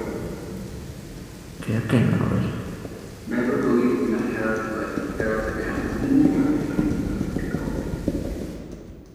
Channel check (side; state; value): both; identical; correlation 1.00